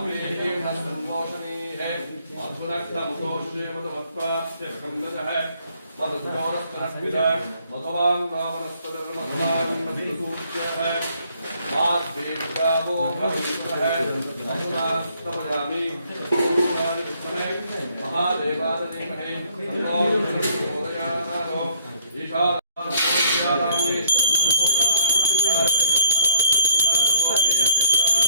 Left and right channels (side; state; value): both; inverted; correlation -0.63